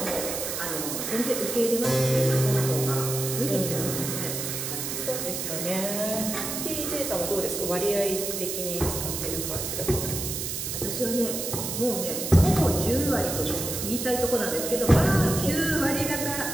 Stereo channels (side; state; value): right; noise; hiss, 4 dB below the sound